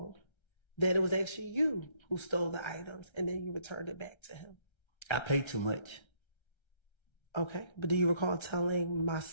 that it was actually you who stole the items and then you returned it back to him? I paid too much. Okay. But do you recall telling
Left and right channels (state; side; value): late; right; 1.3 ms